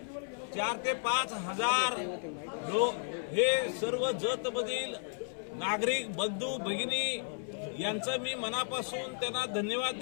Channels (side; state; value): right; silent; 55 dB below the other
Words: 4 ते 5 हजार लोक हे सर्व जतमधील नागरिक बंधू भगिनी यांचं मी मनापासून त्यांना धन्यवाद